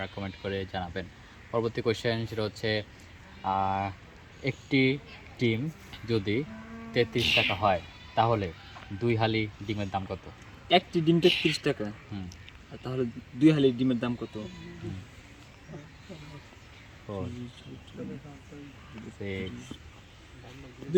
কমেন্ট করে জানাবেন। পরবর্তী কোয়েশ্চেন সেটা হচ্ছে একটি ডিম যদি ৩৩ টাকা হয় তাহলে ২ হালি ডিমের দাম কত? একটি ডিম ৩৩ টাকা। হুম। আর তাহলে ২ হালি ডিমের দাম কত? হুম। 4 6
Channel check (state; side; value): identical; both; correlation 1.00